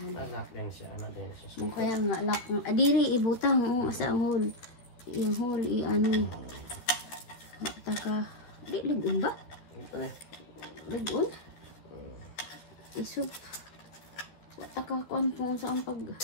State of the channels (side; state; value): right; late; 13 ms